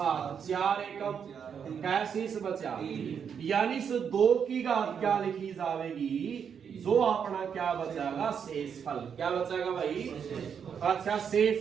4 एकम कैसे से बचा, यानी इस 2 की घात क्या लिखी जाएगी, जो अपना क्या बचाएगा, शेषफल। क्या बचाएगा भाई, अच्छा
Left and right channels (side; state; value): left; quieter; 7.3 dB